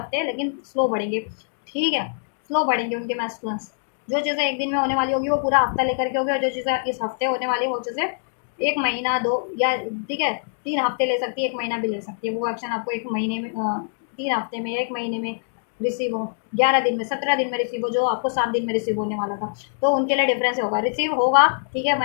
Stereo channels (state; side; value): silent; right; digital silence